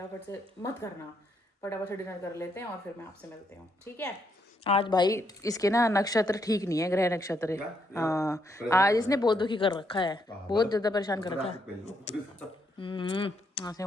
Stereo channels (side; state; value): both; normal; correlation 0.76